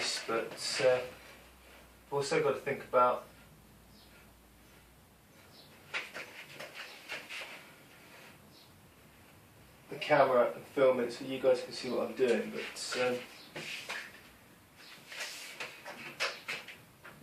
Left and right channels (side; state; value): both; identical; correlation 1.00